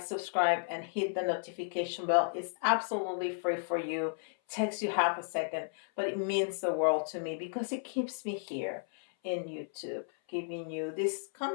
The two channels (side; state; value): right; silent; 55 dB below the other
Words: subscribe, and hit the notification bell. It's absolutely free for you. Takes you half a second, but it means the world to me, because it keeps me here in YouTube, giving you this